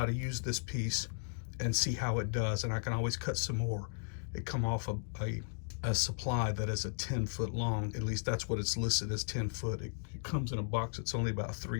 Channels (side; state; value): right; silent; digital silence